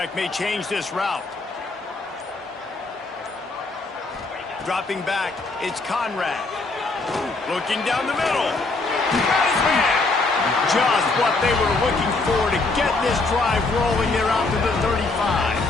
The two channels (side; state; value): right; quieter; 3.5 dB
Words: may change this route. Dropping back, it's Conrad. Looking down the middle. Got his man. Just what they were looking for to get this drive rolling. They're out to the 35.